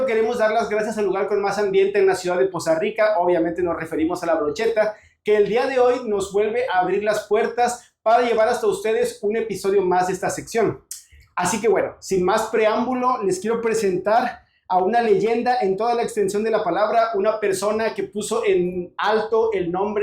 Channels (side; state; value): both; identical; correlation 1.00